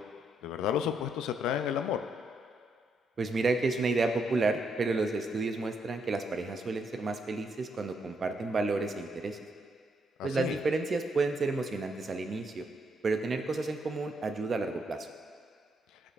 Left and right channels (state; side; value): normal; both; correlation 0.76